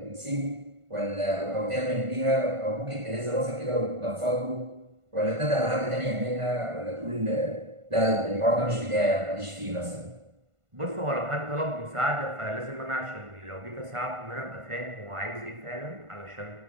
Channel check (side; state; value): left; late; 1.5 ms